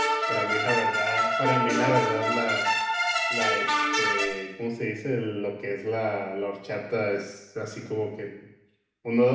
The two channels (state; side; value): identical; both; correlation 1.00